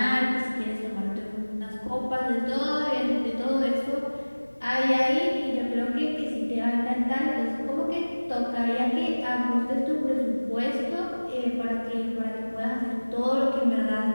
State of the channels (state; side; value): inverted; both; correlation -1.00